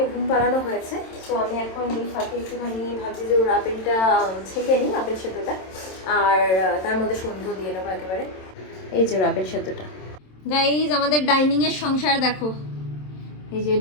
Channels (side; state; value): right; late; 27 ms